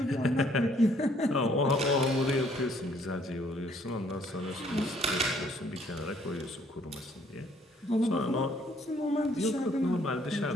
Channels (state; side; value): normal; both; correlation 0.64